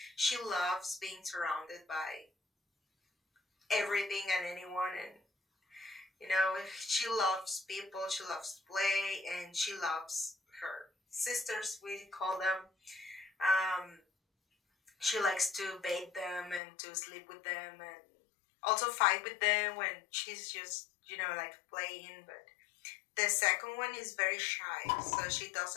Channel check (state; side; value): drops out; right; at 16.6 s